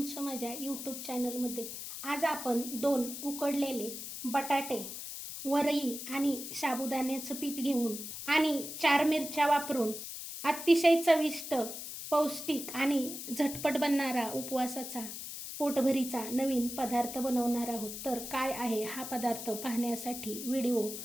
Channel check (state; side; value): noise; left; hiss, 8 dB below the sound